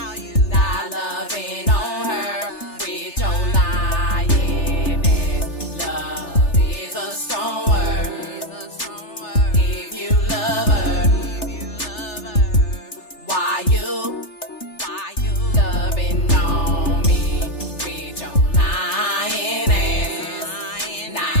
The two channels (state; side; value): late; right; 3.3 ms